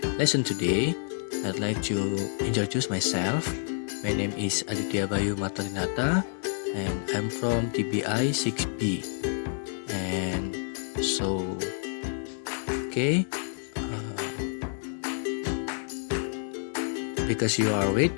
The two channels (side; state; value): right; silent; digital silence